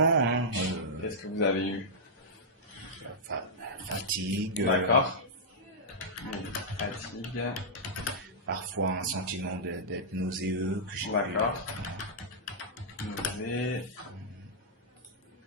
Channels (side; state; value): both; normal; correlation -0.10